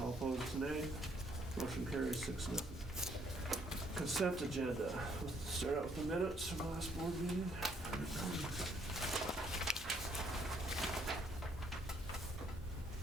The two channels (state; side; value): normal; both; correlation 0.68